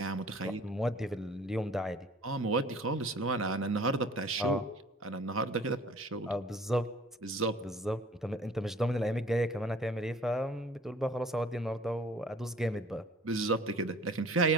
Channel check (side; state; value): both; normal; correlation 0.50